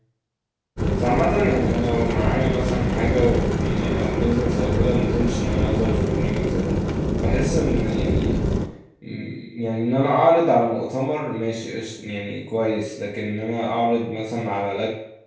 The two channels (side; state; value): both; identical; correlation 1.00